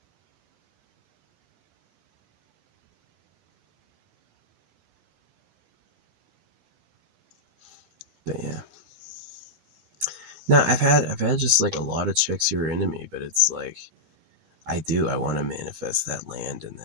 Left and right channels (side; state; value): left; late; 12 ms